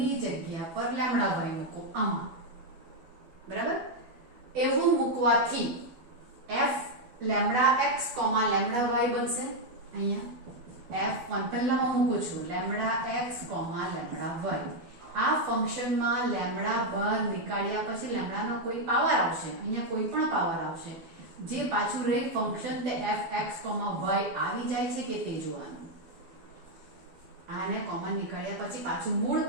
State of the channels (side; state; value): left; late; 12 ms